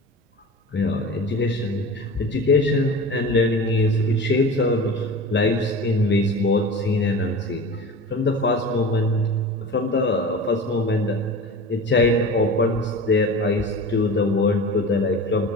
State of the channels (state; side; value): normal; both; correlation 0.33